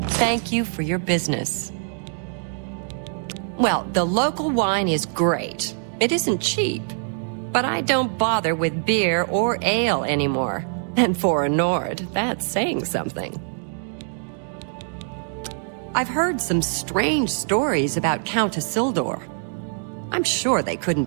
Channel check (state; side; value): silent; left; digital silence